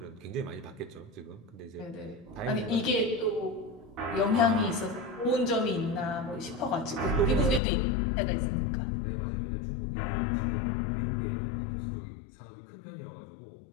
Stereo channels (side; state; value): right; drops out; at 7.6 s